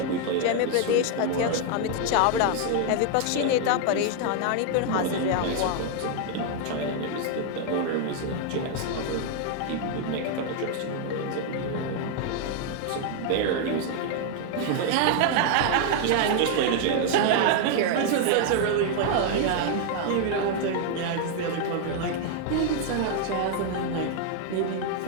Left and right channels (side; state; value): both; different; correlation 0.00